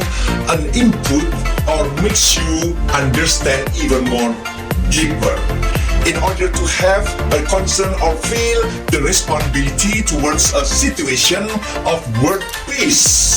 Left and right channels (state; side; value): identical; both; correlation 1.00